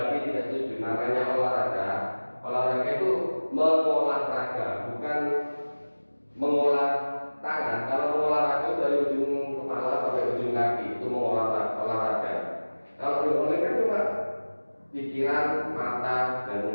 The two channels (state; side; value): inverted; both; correlation -1.00